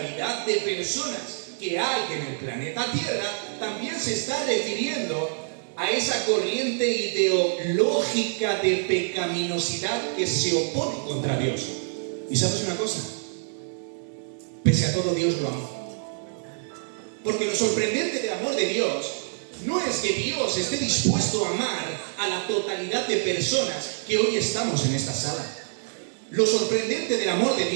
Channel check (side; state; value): left; silent; 61 dB below the other